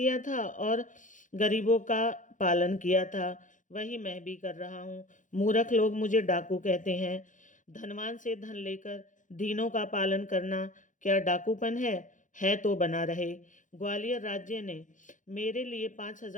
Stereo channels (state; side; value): late; right; 0.37 ms